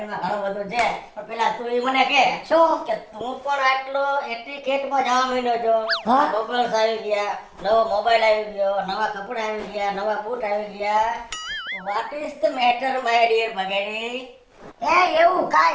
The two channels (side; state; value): both; identical; correlation 1.00